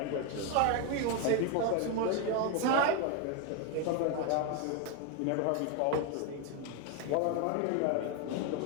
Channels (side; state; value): both; different; correlation 0.02